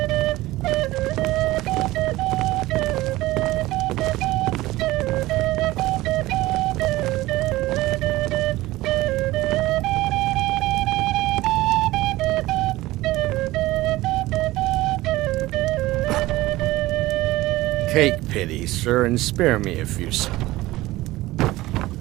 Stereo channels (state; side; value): quieter; left; 18.0 dB